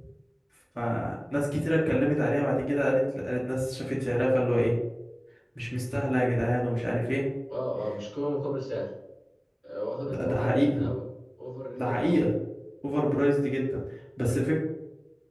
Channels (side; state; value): both; identical; correlation 1.00